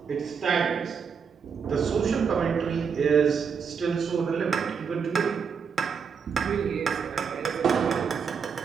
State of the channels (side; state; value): left; quieter; 6.3 dB